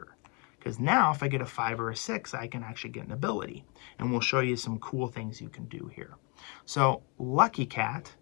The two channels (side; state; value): right; quieter; 33.2 dB